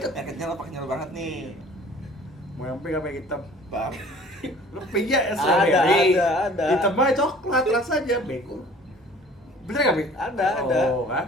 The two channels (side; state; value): both; normal; correlation 0.49